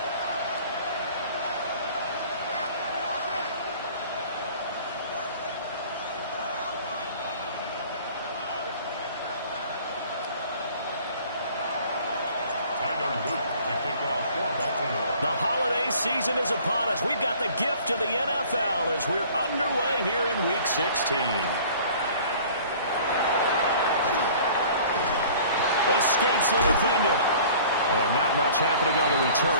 The holiday season is upon us. We've got the gift of the NFL as we're underway here in Week 16. Escapes the defender. And not much happening on the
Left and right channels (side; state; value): both; inverted; correlation -0.49